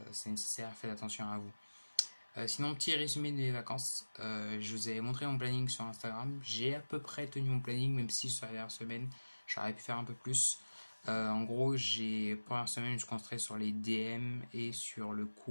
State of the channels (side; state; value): both; inverted; correlation -1.00